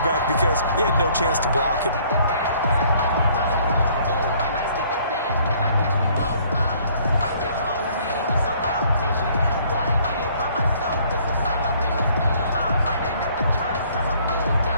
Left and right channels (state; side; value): inverted; both; correlation -0.60